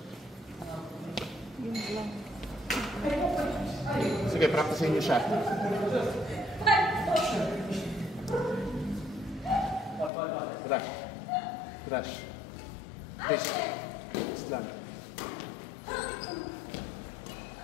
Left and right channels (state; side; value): drops out; right; at 10.1 s